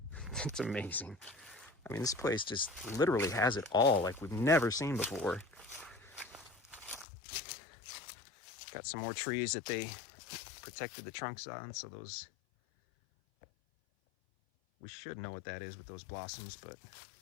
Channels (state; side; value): drops out; right; at 7.1 s